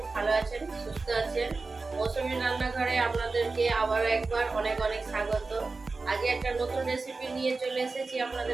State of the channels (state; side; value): quieter; left; 3.9 dB